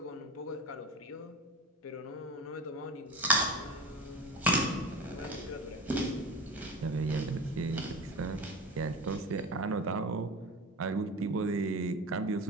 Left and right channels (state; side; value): normal; both; correlation 0.29